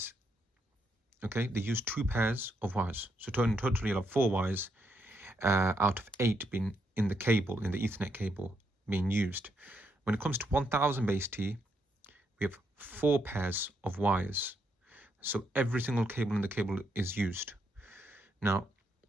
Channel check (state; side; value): normal; both; correlation 0.78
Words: Okay, they use two pairs of wires. So totally you'll have 4 wires out of 8 being in the cable, in the Ethernet cable being used. When it comes to 1000 base T, we have 4 pairs of wires. So every single cable in the cable is used. Now,